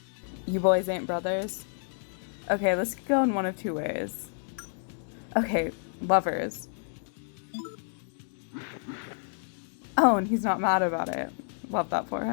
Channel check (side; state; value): right; silent; 58 dB below the other